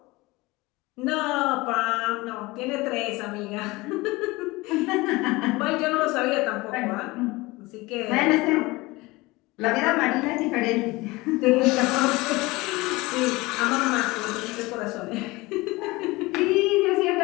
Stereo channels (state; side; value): quieter; right; 21.9 dB